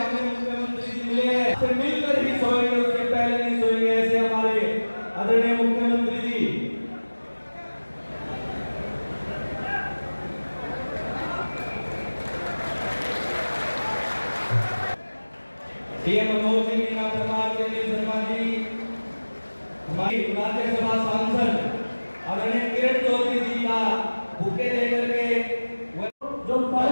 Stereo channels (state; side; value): inverted; both; correlation -1.00